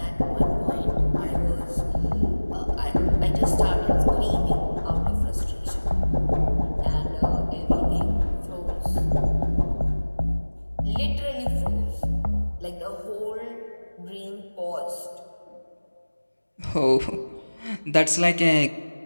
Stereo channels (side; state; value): both; inverted; correlation -1.00